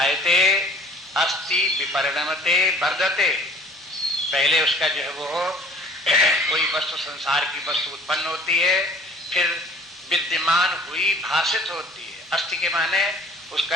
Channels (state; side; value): normal; both; correlation 0.52